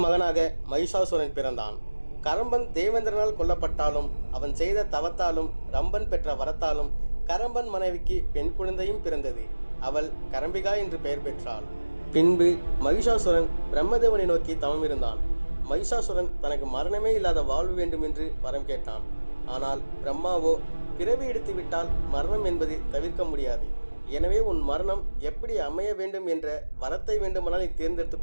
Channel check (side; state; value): both; inverted; correlation -1.00